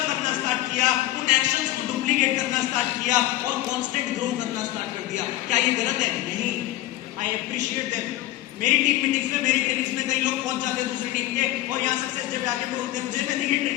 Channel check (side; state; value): right; quieter; 15.7 dB